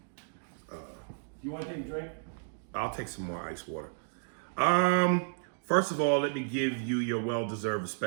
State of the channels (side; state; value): left; silent; digital silence